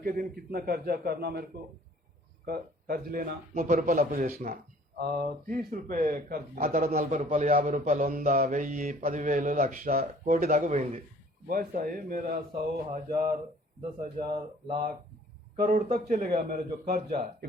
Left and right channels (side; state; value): both; normal; correlation 0.54